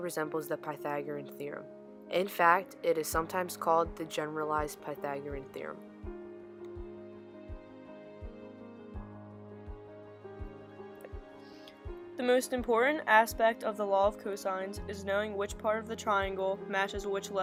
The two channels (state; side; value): identical; both; correlation 1.00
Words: the Pythagorean theorem. In fact, it is sometimes called the generalized Pythagorean theorem. The most important aspect of the law of cosines is knowing which part of the triangle matches which